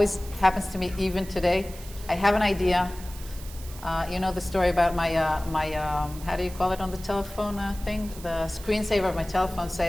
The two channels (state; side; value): noise; right; hiss, 17 dB below the sound